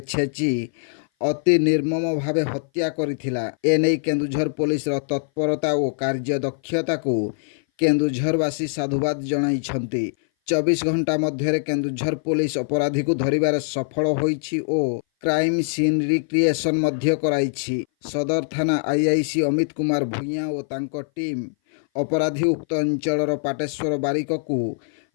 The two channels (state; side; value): silent; right; 59 dB below the other